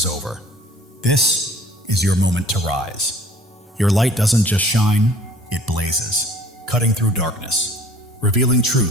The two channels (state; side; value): normal; both; correlation 0.52